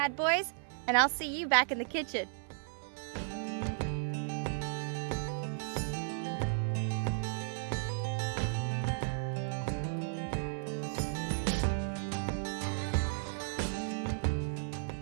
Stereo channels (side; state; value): left; silent; 55 dB below the other